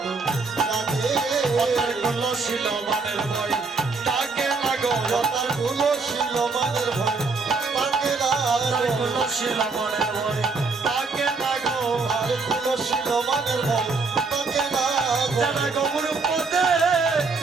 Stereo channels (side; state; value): left; quieter; 4.3 dB